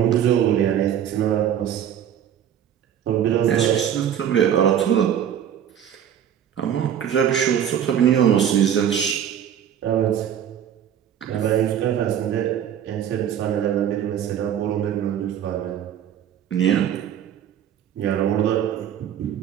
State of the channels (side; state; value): left; quieter; 9.6 dB